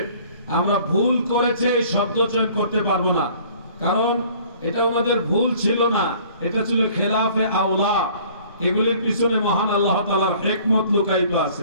আমরা ভুল করেছে শব্দ চয়ন করতে পারবো না, কারণ এটা ওনাদের ভুল ছিল না, এটা ছিল খেলাফে আওলা। এগুলির পিছনে মহান আল্লাহ তাআলার হিকমত লুকায়িত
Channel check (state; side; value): inverted; both; correlation -0.53